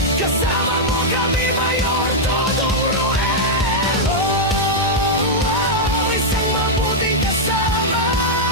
kasama mo kami, Mayor Dodong Ruel. Isang mabuting kasama,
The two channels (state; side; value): normal; both; correlation -0.03